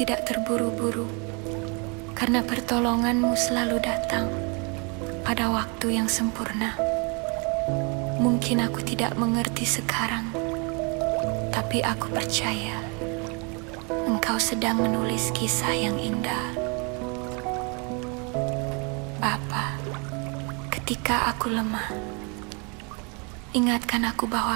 terburu-buru, karena pertolongan-Mu selalu datang pada waktu yang sempurna. Mungkin aku tidak mengerti sekarang, tapi aku percaya Engkau sedang menulis kisah yang indah. Bapa, ketika aku lemah, ingatkan aku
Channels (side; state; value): left; quieter; 33.3 dB